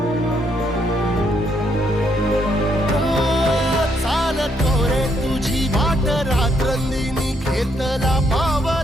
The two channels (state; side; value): normal; both; correlation 0.73